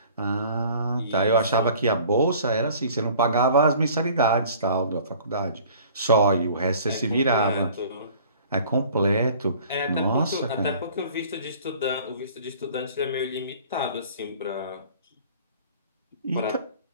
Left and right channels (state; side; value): inverted; both; correlation -0.49